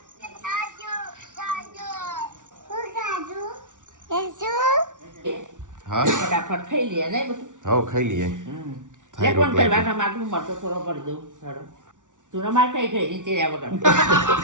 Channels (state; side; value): late; left; 0.87 ms